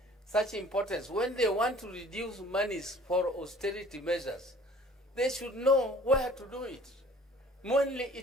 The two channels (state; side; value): normal; both; correlation 0.51